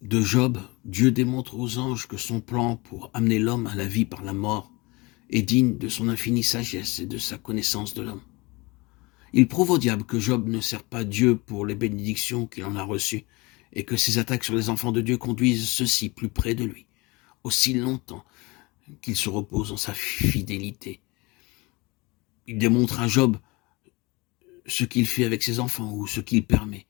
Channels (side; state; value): right; quieter; 24.7 dB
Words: de Job, Dieu démontre aux anges que son plan pour amener l'homme à la vie par la mort est digne de son infinie sagesse et de sa connaissance de l'homme. Il prouve au diable que Job ne sert pas Dieu pour les bénédictions qu'il en a reçues et que ses attaques sur les enfants de Dieu conduisent ceux-ci plus près de lui, aussi longtemps qu'il se repose en sa fidélité. Il démontre à Job ce qu'il fait avec ses enfants ou ce qu'il permet,